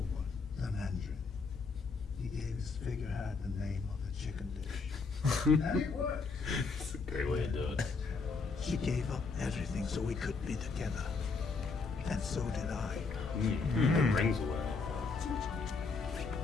the Mandarin. He gave his figurehead the name of the chicken dish. And it worked. It's a great way to do it. He gave up everything so we could be together. And so did I. The rings away.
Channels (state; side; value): quieter; right; 4.5 dB